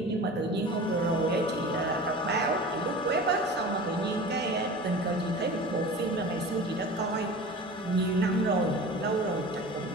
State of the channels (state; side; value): normal; both; correlation 0.37